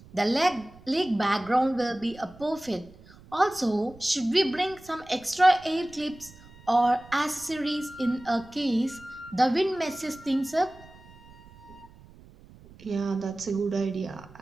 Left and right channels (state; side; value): noise; right; rumble, 23 dB below the sound